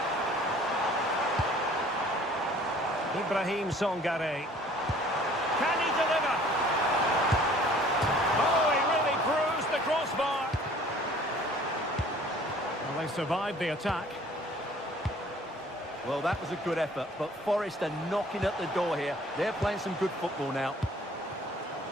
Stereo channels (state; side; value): normal; both; correlation 0.53